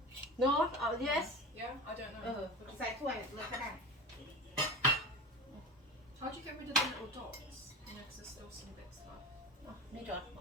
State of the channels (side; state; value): both; normal; correlation 0.29